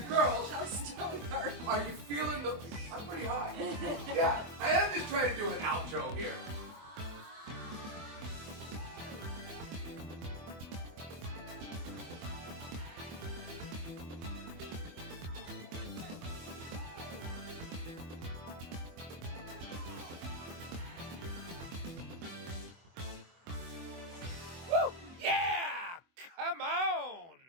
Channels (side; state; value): left; late; 24 ms